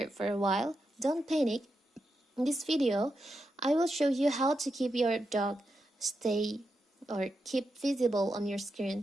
for a while? Don't panic. In this video, I will show you how to keep your dock stay or keep visible on your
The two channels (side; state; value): both; normal; correlation 0.86